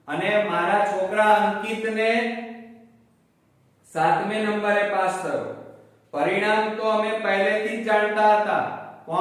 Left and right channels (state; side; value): identical; both; correlation 1.00